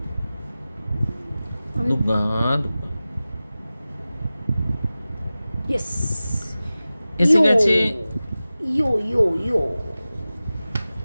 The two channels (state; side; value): inverted; both; correlation -0.96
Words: Yes, এসে গেছে। ইয়ো।